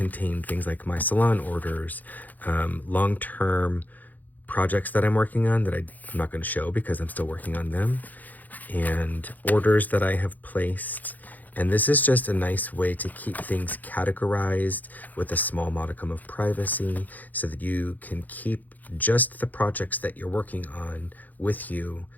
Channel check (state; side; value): late; right; 0.082 ms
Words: things like my salon orders, long-term projects that I'm working on that I'm not going to show because I'm still working on them, and orders that I have placed. And this is just a nice way to keep things categorized with a small modicum of privacy so that you can keep just the projects that you're working on with you